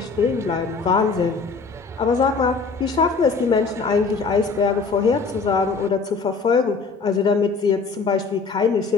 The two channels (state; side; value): quieter; right; 4.6 dB